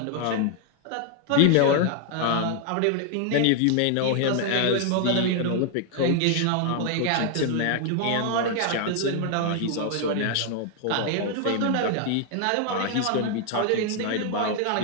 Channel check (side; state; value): both; different; correlation 0.00